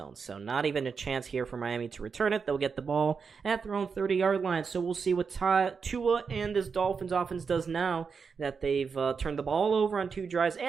So not even a chance here for Miami to return it. They'll get the ball at their own 30-yard line. So we'll see what Tua and this Dolphins offense does now that they've turned the ball over on 2 drives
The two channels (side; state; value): left; quieter; 5.6 dB